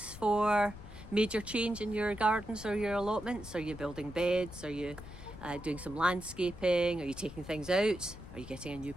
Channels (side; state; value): left; noise; rumble, 14 dB below the sound